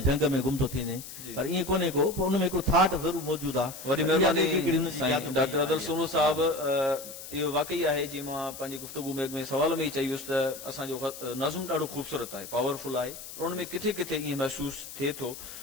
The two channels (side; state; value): left; noise; hiss, 12 dB below the sound